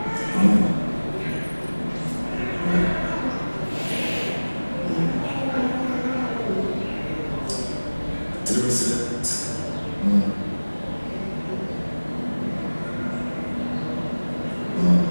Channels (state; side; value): inverted; both; correlation -1.00